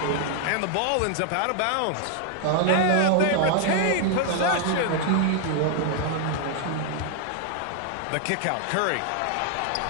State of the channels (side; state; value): both; different; correlation 0.00